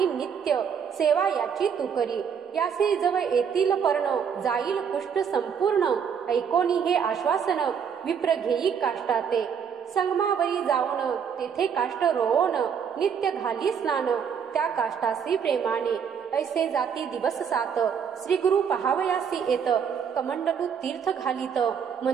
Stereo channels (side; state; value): left; quieter; 7.3 dB